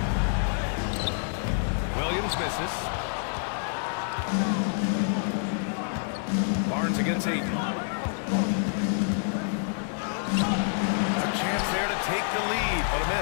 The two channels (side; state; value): right; silent; digital silence